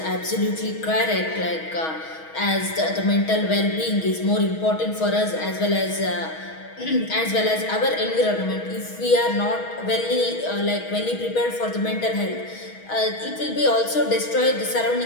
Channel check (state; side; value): late; right; 6.3 ms